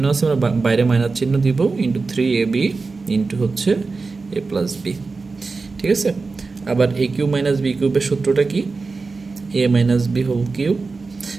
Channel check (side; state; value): left; quieter; 4.1 dB